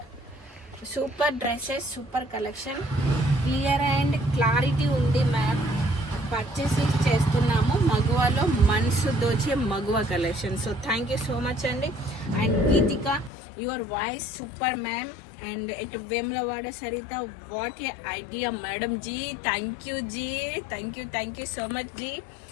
super dresses, super collection, clear and clarity ఉంది మ్యామ్. పర్చేస్ చేస్తున్నాము మగువలో, మనసు దోచే Maguva collection. So thank you so much అండి. And Geetika your voice super ma'am. And ఇటు Vemulawada Saritha what a idea madam ji. Thank you so much ji.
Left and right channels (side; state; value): right; drops out; at 13.3 s